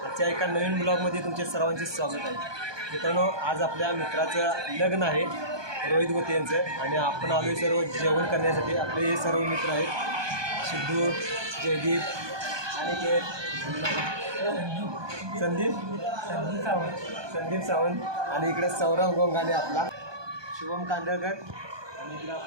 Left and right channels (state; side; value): late; left; 1.2 ms